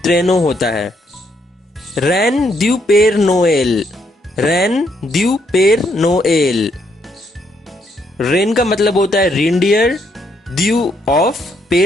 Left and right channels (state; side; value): normal; both; correlation 0.74